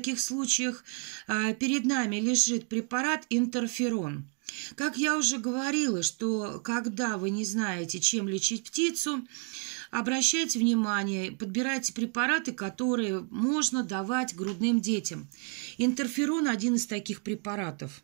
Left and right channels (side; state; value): left; quieter; 38.8 dB